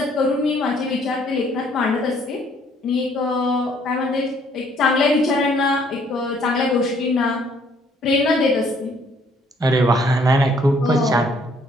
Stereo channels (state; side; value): normal; both; correlation 0.63